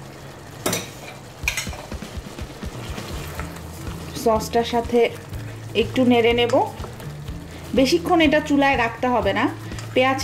সসটার সাথে একটু নেড়ে নেব। বেশিক্ষণ এটা চুলায় রাখতে হবে না।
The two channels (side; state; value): both; identical; correlation 1.00